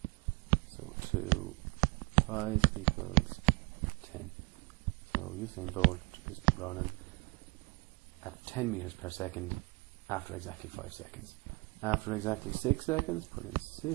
So 5 equals 10. So Usain Bolt is running at 10 meters per second after exactly 5 seconds. After exactly 6 seconds, put in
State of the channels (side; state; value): left; quieter; 28.7 dB